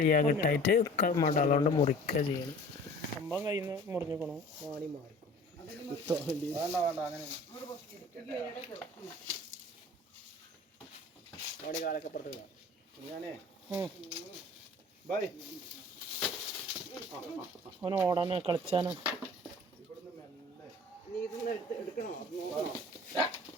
കിട്ടായിട്ട് മടലോണ്ട് മുറിക്കുക ചെയ്യണം. സംഭവം കയ്യിൽ നിന്ന് മുറിഞ്ഞിക്കണോ വാണി മാറിക്കും. അവന് ഓടാനോ കളിച്ചാനോ.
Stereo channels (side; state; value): both; normal; correlation 0.46